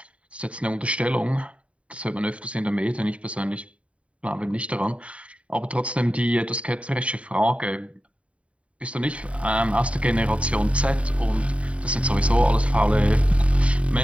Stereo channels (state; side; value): late; left; 0.063 ms